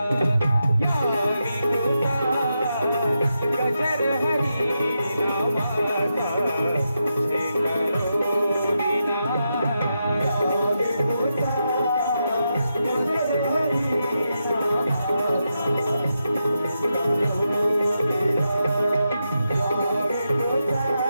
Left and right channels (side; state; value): both; inverted; correlation -0.86